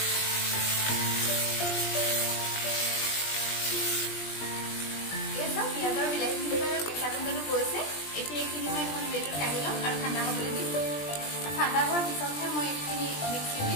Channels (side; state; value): right; late; 20 ms